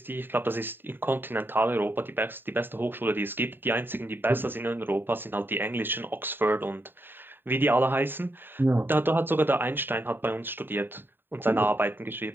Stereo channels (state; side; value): late; left; 0.096 ms